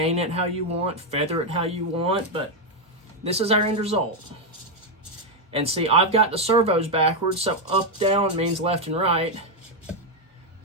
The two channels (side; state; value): both; normal; correlation 0.03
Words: it how you want, feather it how you want, but this is our end result. And see, I've got the servos backwards, so up, down means left and right.